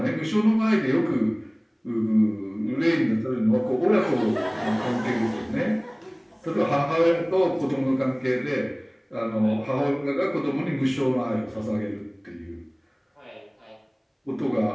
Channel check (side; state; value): both; identical; correlation 1.00